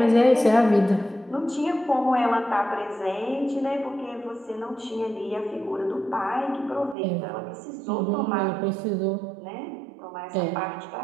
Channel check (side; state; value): left; drops out; at 7.0 s